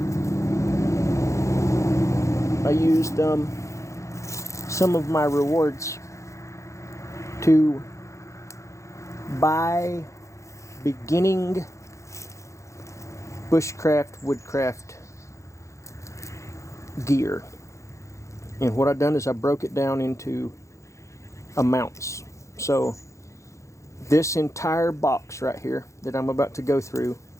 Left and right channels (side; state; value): right; late; 0.15 ms